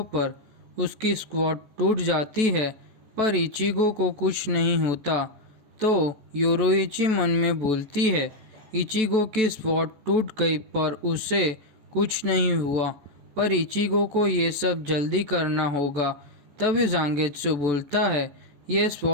पर। उसकी स्क्वाड टूट जाती है पर इचिगो को कुछ नहीं होता। तो योरोइची मन में बोलती है, इचिगो की स्क्वाड टूट गई पर उसे कुछ नहीं हुआ, पर इचिगो को ये सब जल्दी करना होगा। तभी जांगेत्सु बोलता है, ये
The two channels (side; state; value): left; late; 14 ms